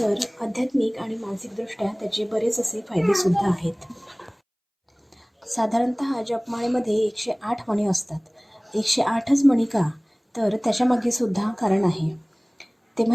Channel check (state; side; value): identical; both; correlation 1.00